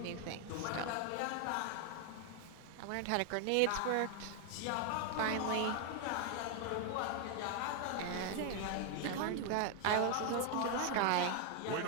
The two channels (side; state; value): both; different; correlation 0.01